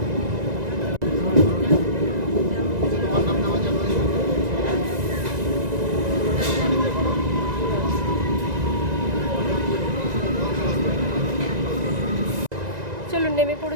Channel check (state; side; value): late; left; 1.9 ms